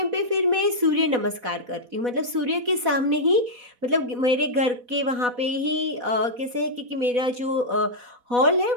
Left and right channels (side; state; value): left; late; 4.1 ms